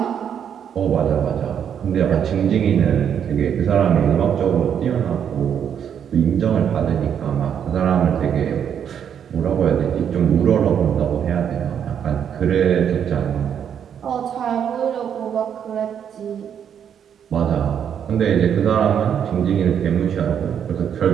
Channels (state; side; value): quieter; left; 8.5 dB